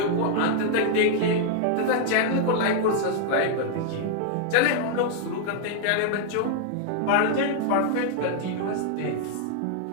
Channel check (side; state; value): both; different; correlation 0.00